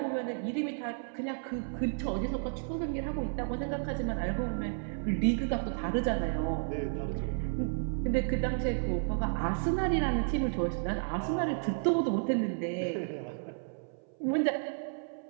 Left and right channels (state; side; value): silent; left; 56 dB below the other